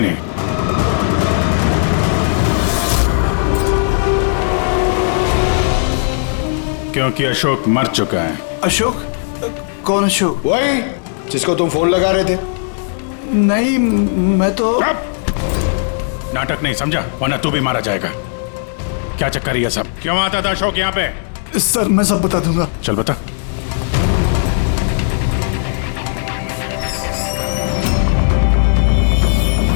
क्योंकि अशोक मर चुका है। अशोक? कौन अशोक? वही जिसको तुम फोन लगा रहे थे। नहीं, मैं तो नाटक नहीं समझा, वरना तू भी मारा जाएगा। क्या चक्कर है ये सब? क्यों आता था अशोक यहाँ पे? सर मैं सब बता दूंगा। चल बता।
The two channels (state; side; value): silent; right; digital silence